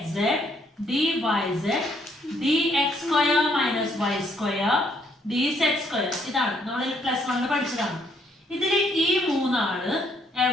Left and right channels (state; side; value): normal; both; correlation 0.69